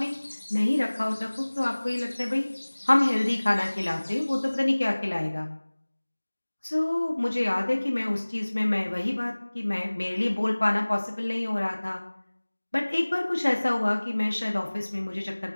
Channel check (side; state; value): both; inverted; correlation -1.00